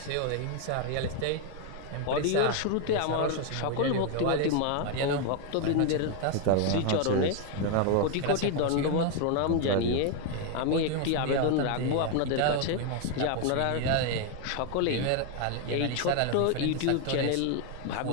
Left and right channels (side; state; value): both; different; correlation 0.01